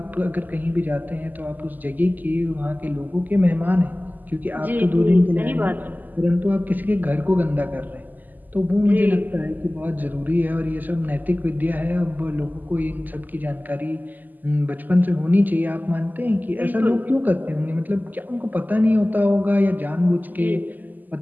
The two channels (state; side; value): late; left; 0.085 ms